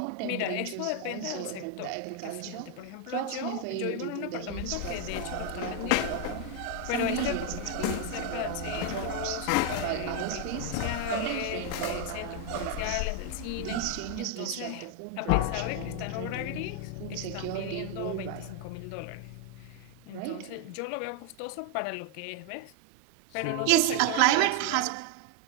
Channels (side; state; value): both; different; correlation 0.00